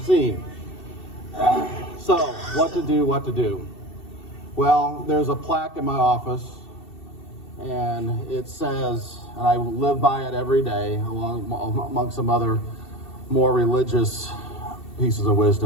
So, what to do? Well, there's a plaque in my office, and it says, and I live by it every day, among some other more religious pieces of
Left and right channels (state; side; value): late; right; 2.7 ms